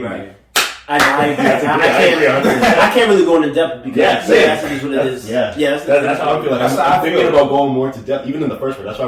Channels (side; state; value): both; identical; correlation 1.00